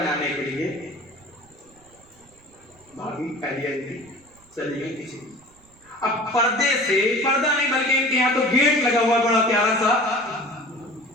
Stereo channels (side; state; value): right; noise; rumble, 29 dB below the sound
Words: کے لیے, بھابھی پہلی تھی, چلی گئی کسی. اب پردے سے, پردہ نہیں بلکہ ان کے یہاں تو گیٹ لگا ہوا بڑا پیارا سا,